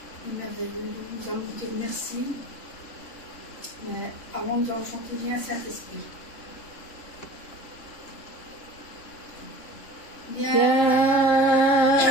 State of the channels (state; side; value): late; right; 3.4 ms